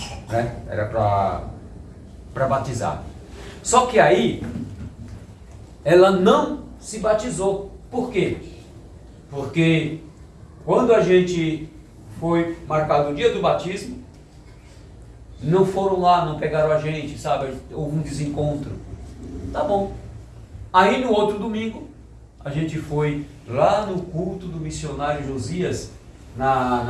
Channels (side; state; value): both; identical; correlation 1.00